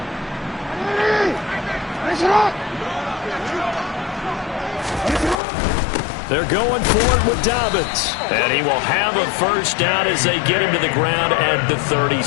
They're going for it with Dobbins. And he will have a first down as they get him to the ground at the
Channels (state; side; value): drops out; right; at 5.4 s